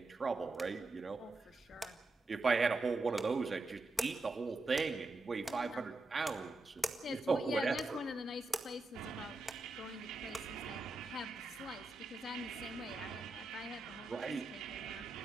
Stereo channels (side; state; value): left; quieter; 3.2 dB